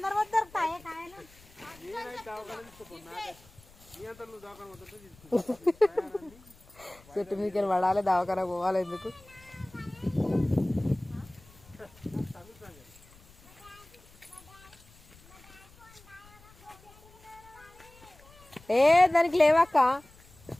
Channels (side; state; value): left; noise; rumble, 25 dB below the sound